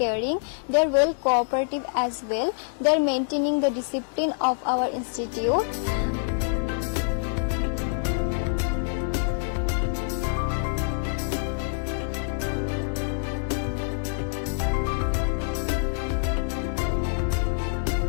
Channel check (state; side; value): silent; right; digital silence